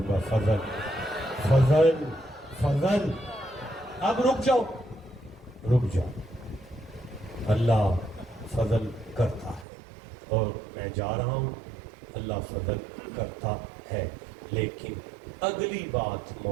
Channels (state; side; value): drops out; left; at 9.7 s